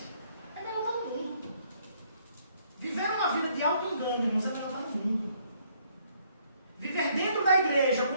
é melhor estar no mundo. Viver uma vida de auto-engano, irmãos, é melhor estar no mundo. Viver dentro da igreja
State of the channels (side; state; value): both; inverted; correlation -0.66